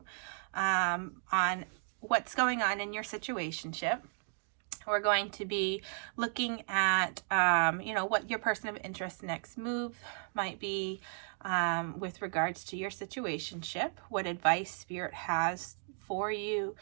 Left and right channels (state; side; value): silent; left; 55 dB below the other